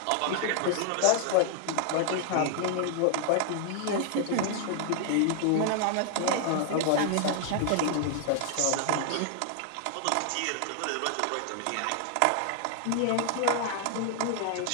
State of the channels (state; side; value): different; both; correlation 0.00